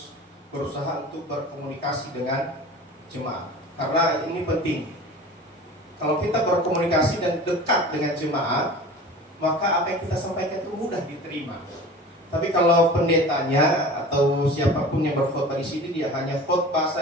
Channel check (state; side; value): normal; both; correlation 0.38